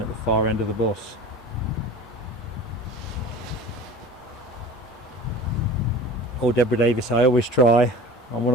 at the far end of the bus. Oh, Deborah Davis, I always try. I'm one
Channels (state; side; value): normal; both; correlation 0.38